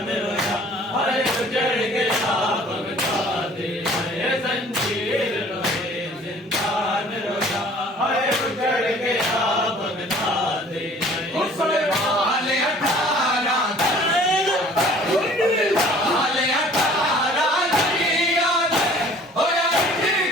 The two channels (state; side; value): normal; both; correlation 0.52